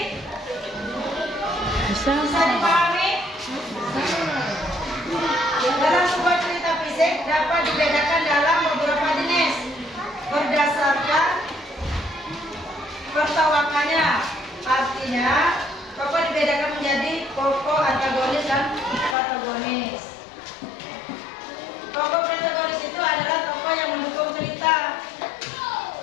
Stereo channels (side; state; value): right; drops out; at 19.2 s